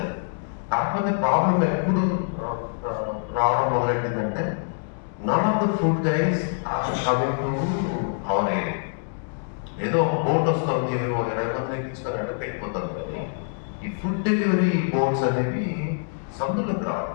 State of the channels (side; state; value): right; silent; digital silence